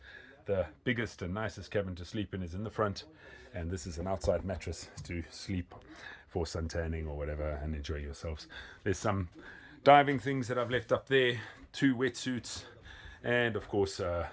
The biggest and nicest cabin to sleep in is in the front, and this is an outside mattress to sleep for suntanning or whatever and enjoy yourselves. There's some diving things that I've left up there, 2 wetsuits, and of course a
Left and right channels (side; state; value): both; identical; correlation 1.00